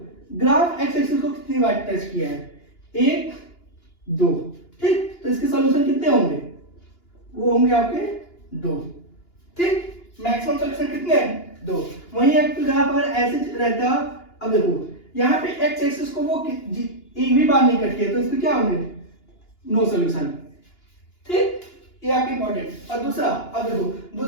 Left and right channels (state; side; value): late; right; 2.9 ms